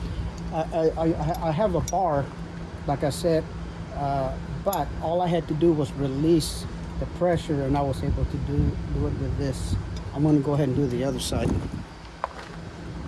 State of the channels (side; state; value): both; identical; correlation 1.00